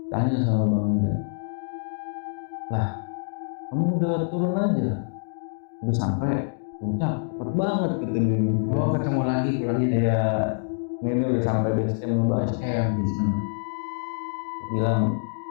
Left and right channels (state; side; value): silent; right; digital silence